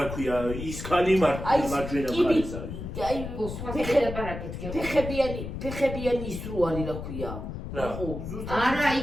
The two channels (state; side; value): noise; left; rumble, 7 dB below the sound